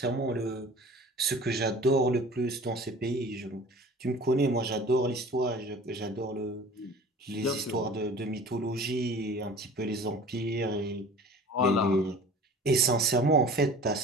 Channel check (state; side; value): normal; both; correlation 0.43